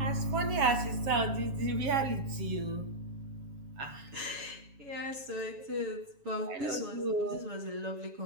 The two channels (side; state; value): left; late; 7.2 ms